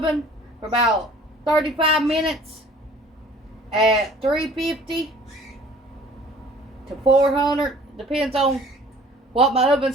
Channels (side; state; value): both; normal; correlation 0.51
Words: for about 35 minutes at 350 to 400. Depends on what my